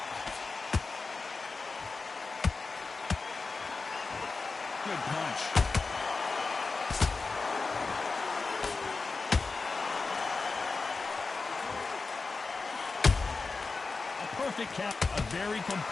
Good punch. A perfect count. A very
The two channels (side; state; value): right; quieter; 4.1 dB